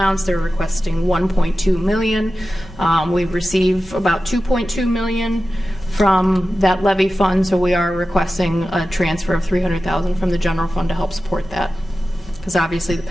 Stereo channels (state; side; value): normal; both; correlation 0.94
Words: they're requesting 1.2 million. We receive about 2.2 million from that levy fund, so we are requesting a transfer of 300,000 from the general fund to help support that. Because obviously the